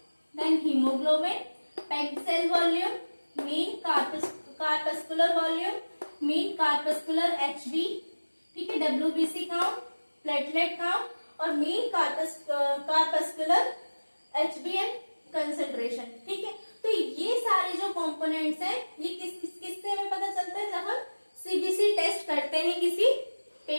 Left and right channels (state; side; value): inverted; both; correlation -1.00